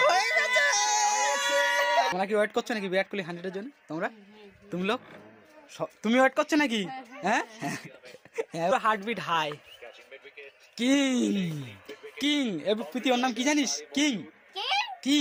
হয়ে গেছে। তোমরা কি ওয়েট করছো নাকি বিরাট কোহলি 100-এর জন্য? তুমি লোক তুমি ওয়েট করছো নাকি? হ্যাঁ হার্টবিট হাই। কিং কিং প্রীতি ওর নাম কি জানিস? কিং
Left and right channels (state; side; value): identical; both; correlation 1.00